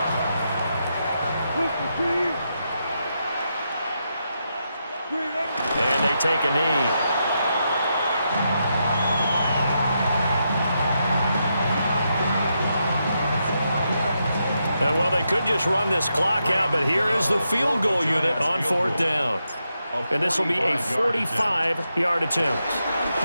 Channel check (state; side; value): inverted; both; correlation -0.83